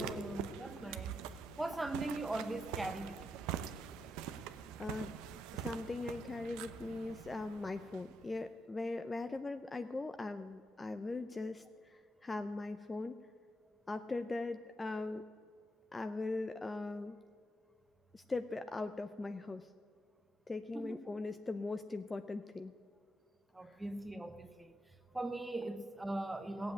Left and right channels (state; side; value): normal; both; correlation 0.83